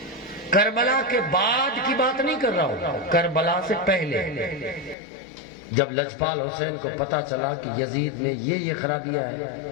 کربلا کے بعد کی بات نہیں کر رہا ہوں، کربلا سے پہلے جب لجپال حسین کو پتا چلا کہ یزید میں یہ خرابیاں ہیں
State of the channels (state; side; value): drops out; right; at 5.0 s